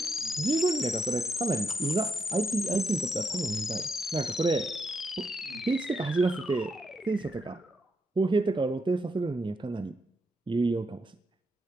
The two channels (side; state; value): both; normal; correlation 0.80